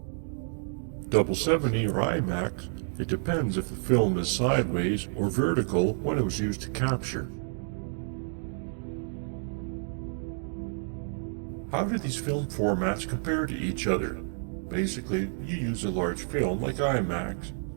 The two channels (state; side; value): silent; left; 58 dB below the other